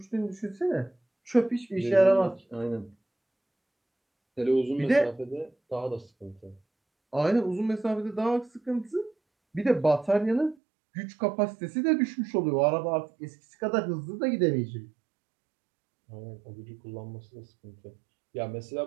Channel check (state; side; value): drops out; left; at 10.6 s